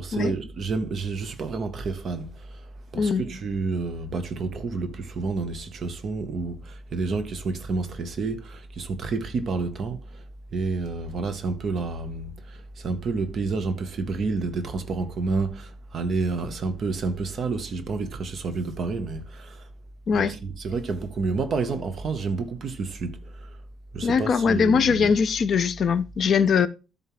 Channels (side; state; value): both; normal; correlation 0.72